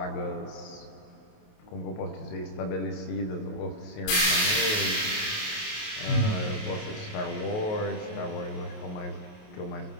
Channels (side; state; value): right; late; 28 ms